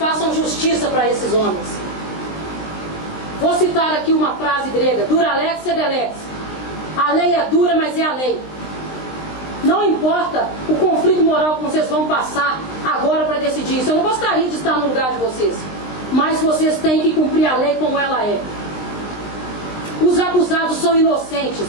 justiça para esses homens. Vou citar aqui uma frase grega: duralex sed lex. A lei é dura, mas é a lei. Não importa o conflito moral que vocês vão passar agora para decidir isso. Eu não gostaria de estar no lugar de vocês, mas vocês têm que cumprir a lei como ela é. Os acusados são inocentes,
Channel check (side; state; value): right; late; 19 ms